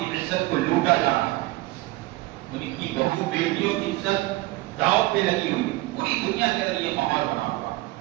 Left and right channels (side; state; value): left; quieter; 19.4 dB